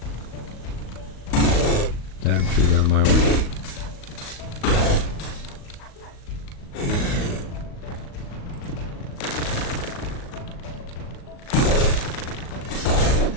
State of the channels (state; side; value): late; right; 38 ms